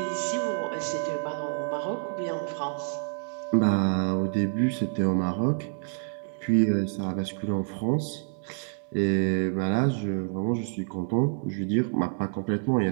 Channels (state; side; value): silent; left; 60 dB below the other